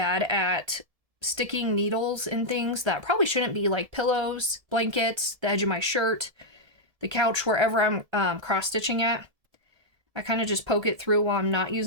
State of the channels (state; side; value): late; left; 1.7 ms